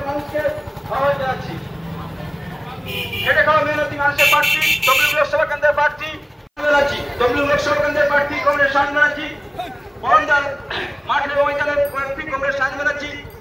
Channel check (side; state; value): both; identical; correlation 1.00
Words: মানুষকে আহ্বান জানাচ্ছি। খেটে খাওয়া মেহনতি মানুষের প্রার্থী তমলুক লোকসভা কেন্দ্রের প্রার্থী ব্যানার্জি, তমলুক লোকসভা কেন্দ্রের প্রার্থী কংগ্রেস সায়ন ব্যানার্জি, মহনদার মাঠের ময়দানের প্রার্থী কংগ্রেস সায়ন ব্যানার্জি।